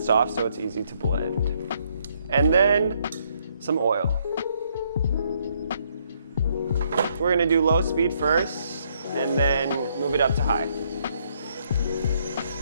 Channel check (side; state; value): both; inverted; correlation -0.71